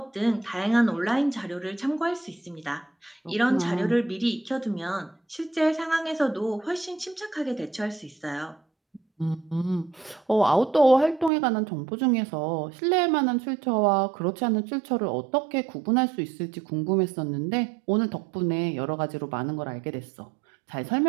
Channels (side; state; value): left; drops out; at 11.3 s